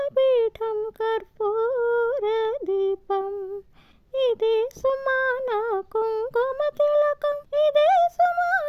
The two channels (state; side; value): identical; both; correlation 1.00